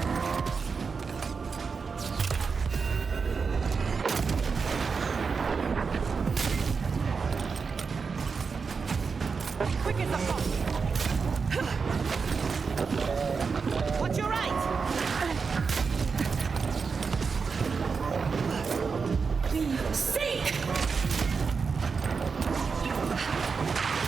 Quick as a hawk. Watch your right. Sink!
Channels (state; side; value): quieter; left; 5.2 dB